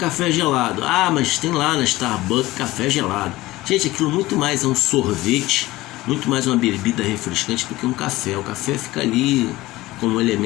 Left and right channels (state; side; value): quieter; right; 18.3 dB